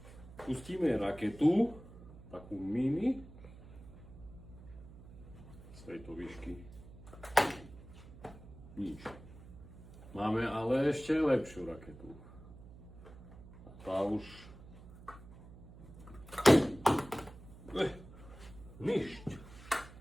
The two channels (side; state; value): right; noise; hum, 17 dB below the sound